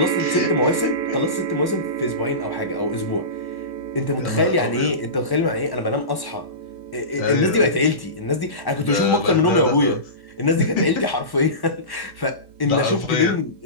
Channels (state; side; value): late; right; 1.1 ms